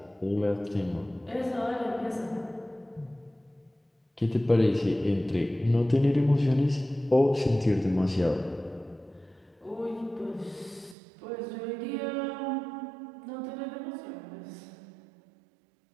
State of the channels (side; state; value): left; drops out; at 11.0 s